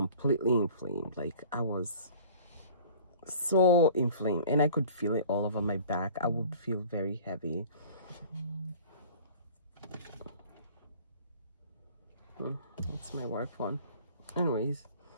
inflamed. Like I was so inflamed, and I could feel it all over my back. I would feel very heavy. That's my work phone. Anyways,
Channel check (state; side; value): inverted; both; correlation -0.46